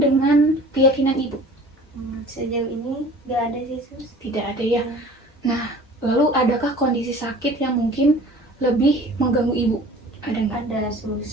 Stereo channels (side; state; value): both; normal; correlation 0.45